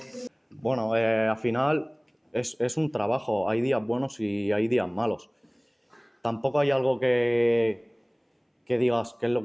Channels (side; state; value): both; identical; correlation 1.00